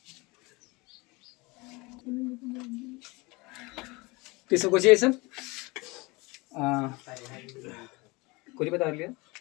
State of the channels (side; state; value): right; quieter; 24.8 dB